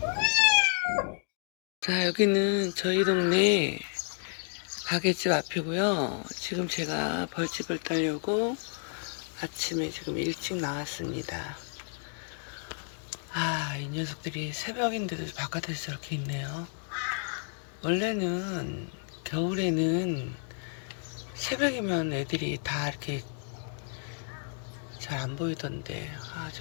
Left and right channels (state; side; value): silent; right; 57 dB below the other